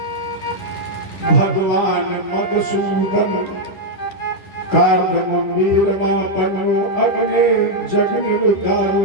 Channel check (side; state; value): right; late; 10 ms